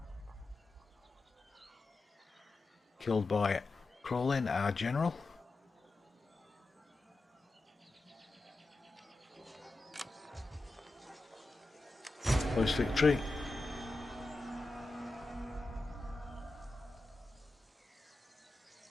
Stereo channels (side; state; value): right; quieter; 3.0 dB